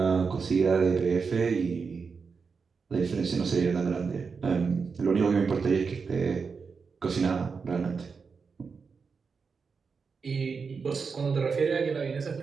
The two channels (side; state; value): left; quieter; 5.3 dB